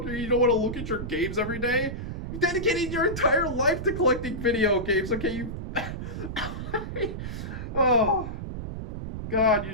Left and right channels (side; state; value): right; noise; rumble, 6 dB below the sound